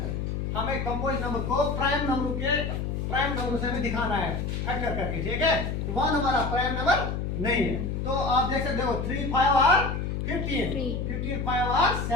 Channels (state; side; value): noise; left; hum, 2 dB below the sound